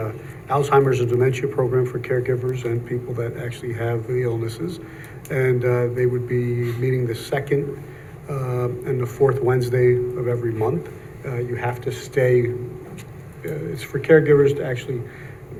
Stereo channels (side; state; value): both; identical; correlation 1.00